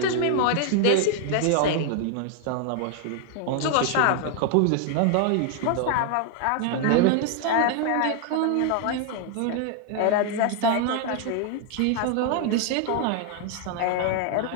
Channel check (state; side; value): different; both; correlation 0.00